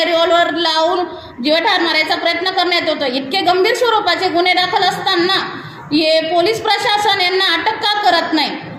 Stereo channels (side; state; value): both; identical; correlation 1.00